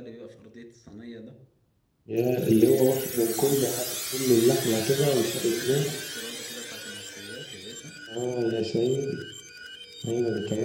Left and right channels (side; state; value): both; identical; correlation 1.00